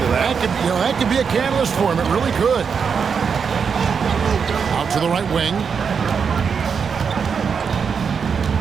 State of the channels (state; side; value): quieter; left; 6.3 dB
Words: of that. That could be a catalyst for him. It really could. Out to the right wing.